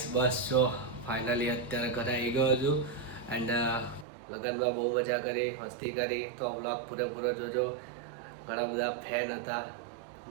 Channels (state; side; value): drops out; left; at 4.0 s